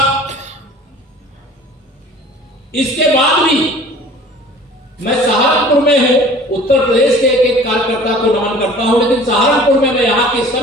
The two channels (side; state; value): both; normal; correlation 0.46